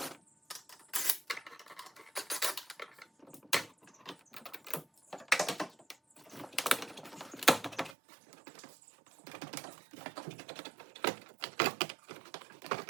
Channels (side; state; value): left; drops out; at 8.0 s